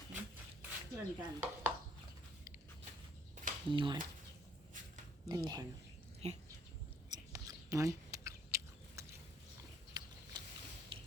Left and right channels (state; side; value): normal; both; correlation 0.63